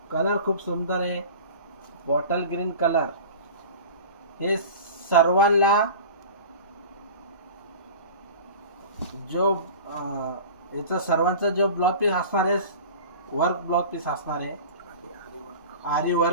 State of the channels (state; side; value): inverted; both; correlation -0.37